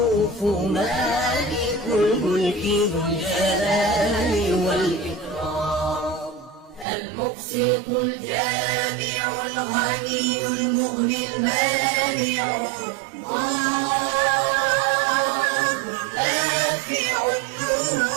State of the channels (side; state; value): left; drops out; at 6.9 s